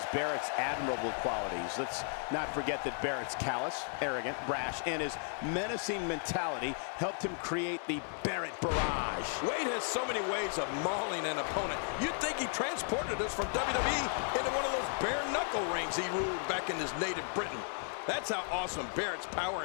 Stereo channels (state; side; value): silent; right; 55 dB below the other